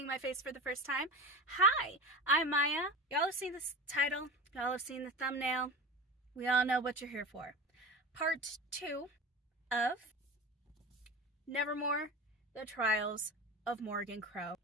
my face for the first time. Hi, I'm Maya. Y'all have seen this title. Y'all have seen the thumbnail. We all know what you're here for. Part 2 of Nevermoor, The Trials of Morrigan Crow.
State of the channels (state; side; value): normal; both; correlation 0.29